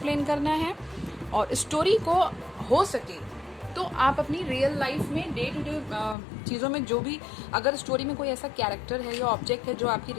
करना है। और स्टोरी को हो सके तो आप अपनी रियल लाइफ में डे टू डे चीज़ों में जो भी, अगर स्टोरी में कोई ऐसा कैरेक्टर है या ऑब्जेक्ट है जो आपकी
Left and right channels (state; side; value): drops out; right; at 6.2 s